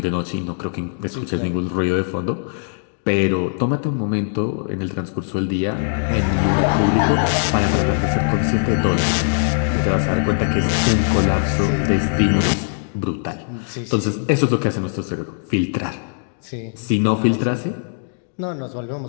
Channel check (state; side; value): silent; right; digital silence